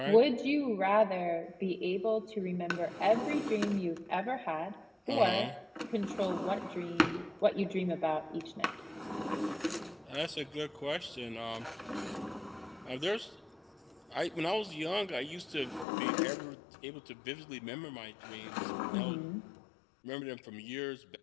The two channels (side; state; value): right; drops out; at 15.9 s